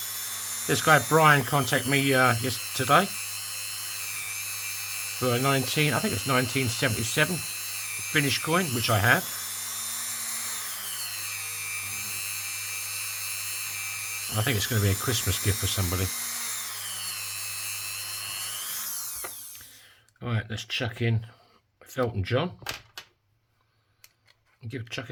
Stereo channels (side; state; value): both; identical; correlation 1.00